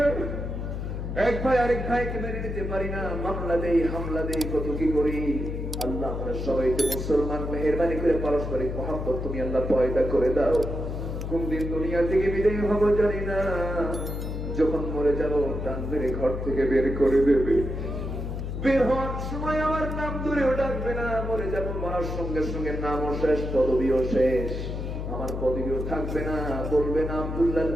এক ভাই আরেক ভাইকে মেনে নিতে পারি না, মামলা দেই হামলা দেই কত কি করি। আল্লাহ আমরা সবাই তো মুসলমান, মেহেরবানি করে পারস্পরিক মহব্বত তুমি আল্লাহ পয়দা করে দাও। কোন দিন দুনিয়া থেকে বিদায় হব জানি না, যখন মরে যাব টান মেরে ঘর থেকে বের করে দেবে, বের হওয়ার সময় আমার নাম ধরেও ডাকবে না, মরে যাব মরার সঙ্গে সঙ্গে নামও শেষ পদবিও শেষ, আমার পদবিও থাকবে না। বলবে না আব্দুল্লাহ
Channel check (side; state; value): left; noise; hum, 4 dB below the sound